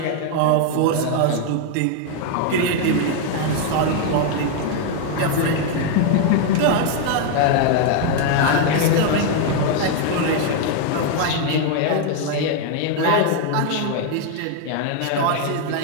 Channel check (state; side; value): different; both; correlation 0.01